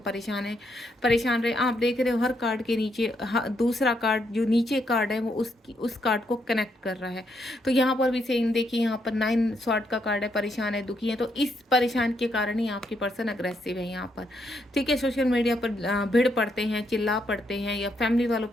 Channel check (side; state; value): both; normal; correlation 0.77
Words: रहे। आप देख रहे हो हर कार्ड के नीचे दूसरा कार्ड, जो नीचे कार्ड है वो उस कार्ड को कनेक्ट कर रहा है। तो यहाँ पर भी सेम देखिए, यहाँ पर 9 स्वॉर्ड का कार्ड है, परेशान है, दुखी है। तो इस परेशान के कारण ही आपके पर्सन अग्रेसिव है यहाँ पर। ठीक है, सोशल मीडिया पर भिड़ पड़ते हैं, चिल्ला पड़ते हैं, या फैमिली वालों